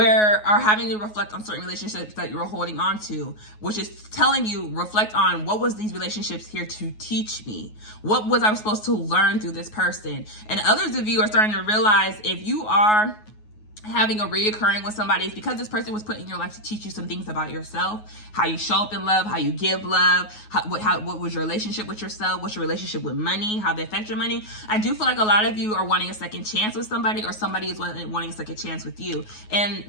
having to reflect on certain relationships that you're holding on to, which is telling you, reflect on what was these relationships here to teach me? What was I supposed to learn through this person? And others of you are starting to realize if you are having a reoccurring with somebody, it's because this person was put in your life to teach you some things about yourself, how you show up in love, how you give love, what was your relationship with yourself, what's your relationship with money, how they affect your money. I do feel like a lot of you are wanting a second chance with somebody, or somebody is wanting a second chance with you. And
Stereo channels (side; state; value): right; late; 9.4 ms